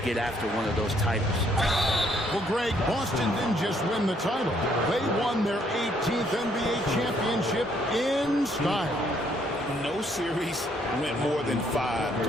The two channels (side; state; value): both; normal; correlation 0.68